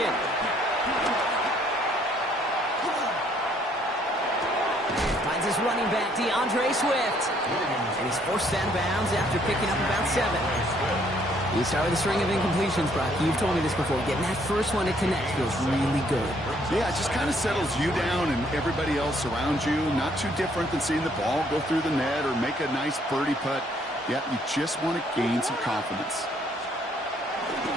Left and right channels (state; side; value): normal; both; correlation 0.66